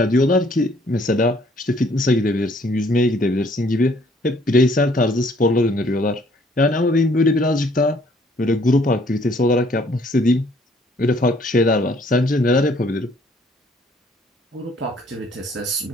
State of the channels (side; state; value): both; normal; correlation 0.62